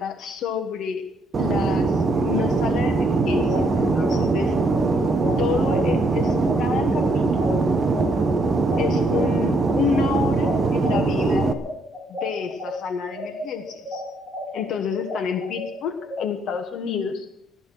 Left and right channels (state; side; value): normal; both; correlation 0.72